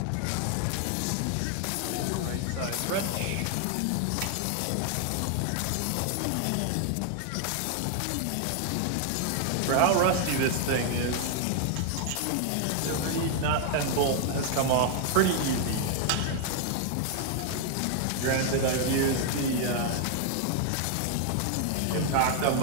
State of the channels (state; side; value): different; both; correlation 0.00